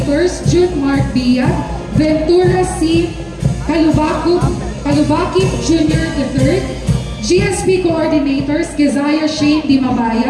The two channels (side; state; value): both; identical; correlation 1.00